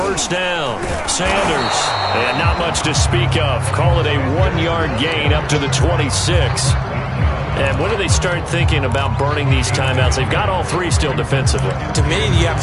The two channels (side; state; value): both; identical; correlation 1.00